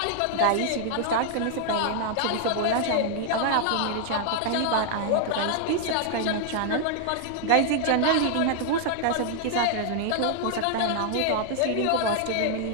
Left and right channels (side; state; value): both; different; correlation 0.00